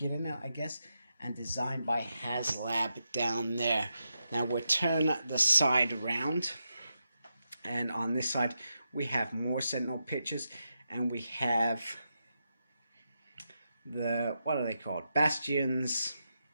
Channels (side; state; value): both; inverted; correlation -0.86